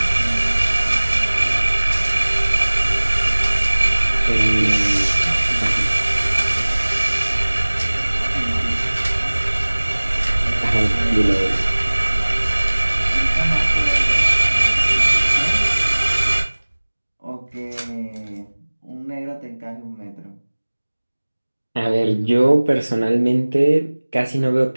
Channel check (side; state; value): both; inverted; correlation -1.00